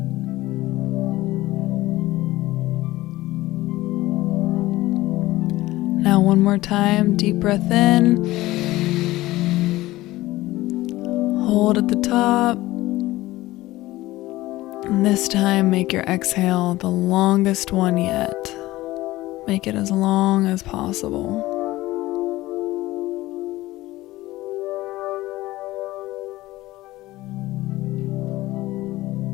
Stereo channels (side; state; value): right; quieter; 17.6 dB